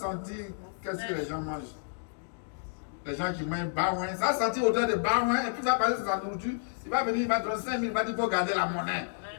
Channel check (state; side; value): silent; right; digital silence